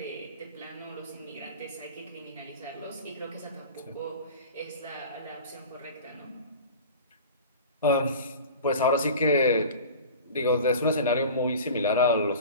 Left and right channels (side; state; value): both; inverted; correlation -0.37